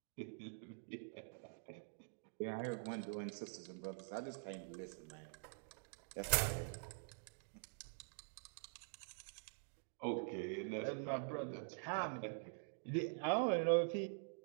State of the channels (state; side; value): silent; left; digital silence